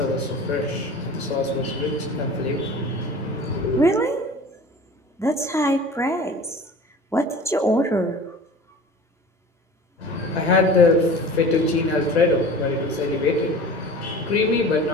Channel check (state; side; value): normal; both; correlation 0.40